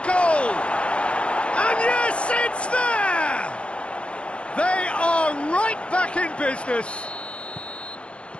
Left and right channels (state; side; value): late; right; 0.059 ms